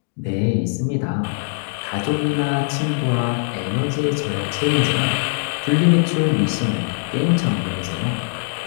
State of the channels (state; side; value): silent; right; digital silence